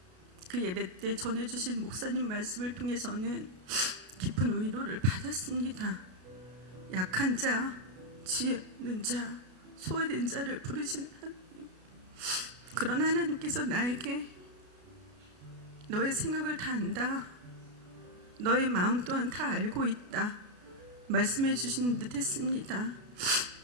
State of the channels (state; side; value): late; left; 32 ms